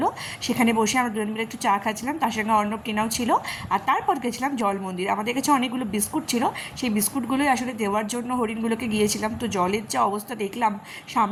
সেখানে বসে আমরা দুজন মিলে একটু চা খাচ্ছিলাম, তার সঙ্গে অর্ণব কেনাও ছিল। আর তারপর গেছিলাম জল মন্দির। আমাদের কাছে অনেকগুলো বিস্কুট ছিল, সেই বিস্কুটগুলোই আসলে দেওয়ার জন্য হরিণগুলোকে গিয়েছিলাম। তো জলের যা অবস্থা দেখলাম,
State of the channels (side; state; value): both; identical; correlation 1.00